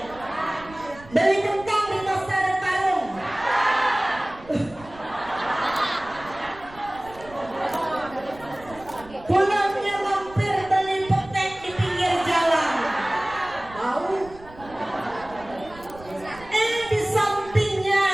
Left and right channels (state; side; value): noise; right; rumble, 20 dB below the sound